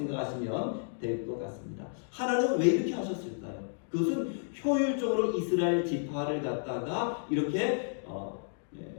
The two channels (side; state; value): right; silent; digital silence